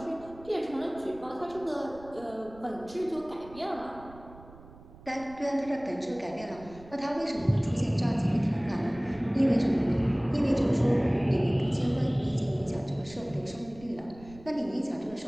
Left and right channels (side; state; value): right; noise; rumble, 20 dB below the sound